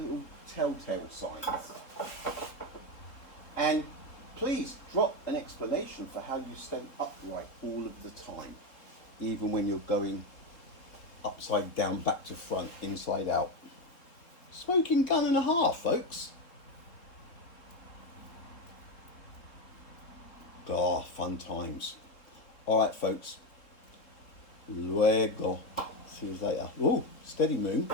little telltale signs. And please drop an explanation for how you stay upright all of the time, even when you're going upside down, back to front, inside out. Smoking gun and a half, folks. Ah, fun times. All right, folks. Luego. See you later. Oh, steady moon.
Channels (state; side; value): late; right; 3.7 ms